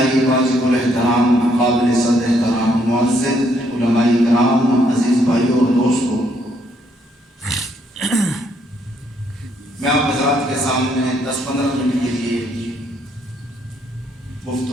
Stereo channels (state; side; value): normal; both; correlation 0.71